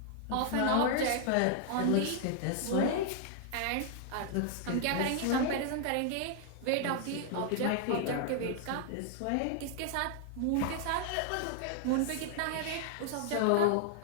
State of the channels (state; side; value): different; both; correlation 0.00